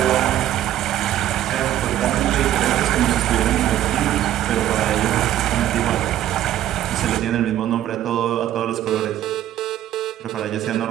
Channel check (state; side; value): quieter; left; 12.3 dB